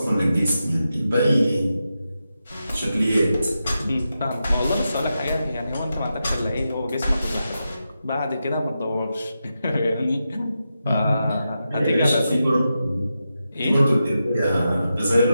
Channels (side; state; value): both; inverted; correlation -0.89